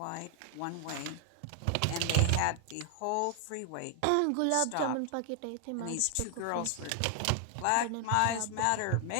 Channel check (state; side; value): different; both; correlation 0.00